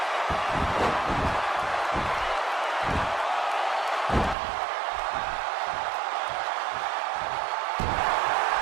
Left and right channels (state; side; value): drops out; left; at 4.4 s